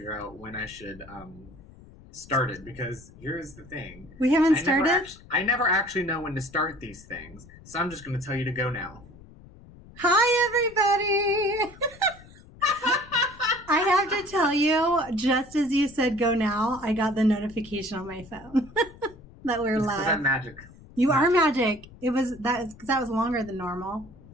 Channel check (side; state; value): left; noise; rumble, 21 dB below the sound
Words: out when I should start it, because here's the thing. We haven't started? I never actually know when to start these things, so I'm just going to tell you to go now. Hi, everybody! I have to tell you, just as you said go now, I got the notification on my phone that we're live. I'm magic. You are magic. Because that was longer than normal.